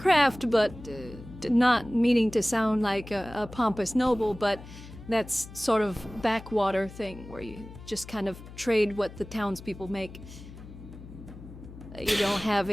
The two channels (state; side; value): noise; left; hum, 16 dB below the sound